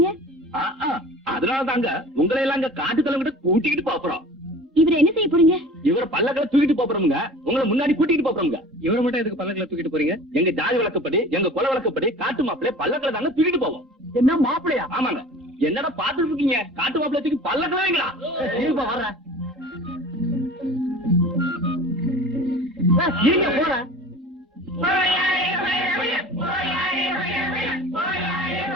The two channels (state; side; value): normal; both; correlation 0.41